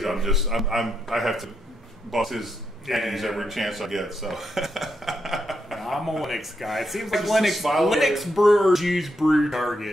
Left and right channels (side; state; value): both; normal; correlation 0.81